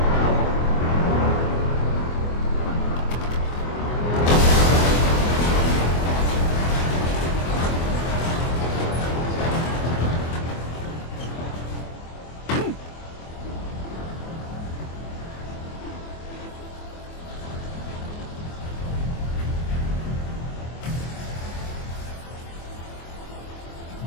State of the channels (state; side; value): late; right; 24 ms